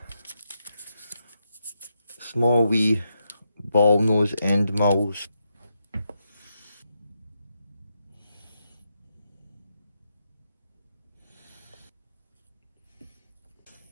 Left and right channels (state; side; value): inverted; both; correlation -0.83